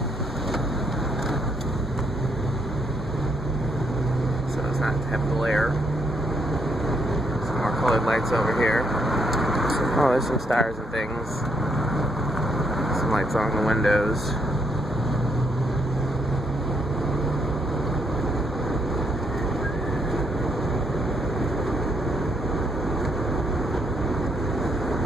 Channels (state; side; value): normal; both; correlation 0.74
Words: not have glare. Some more colored lights over here. Oh, there's some stars and things. Some lights on the windows.